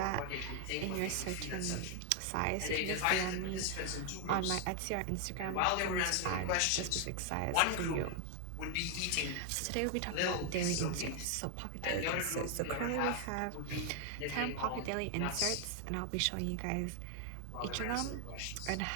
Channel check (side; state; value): both; different; correlation 0.00